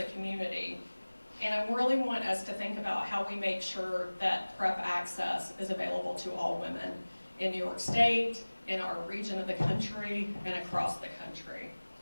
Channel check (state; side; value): inverted; both; correlation -1.00